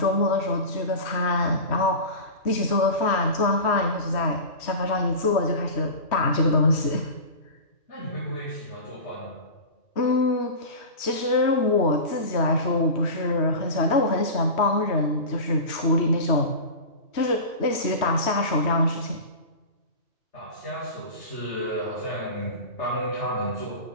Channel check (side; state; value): right; late; 3.1 ms